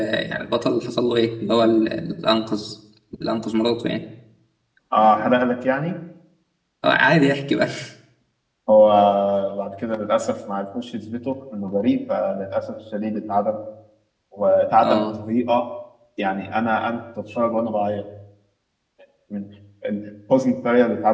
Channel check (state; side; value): identical; both; correlation 1.00